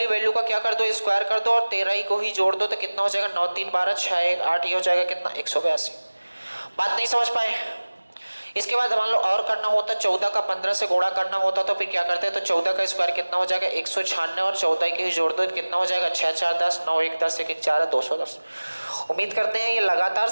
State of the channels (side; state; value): both; inverted; correlation -1.00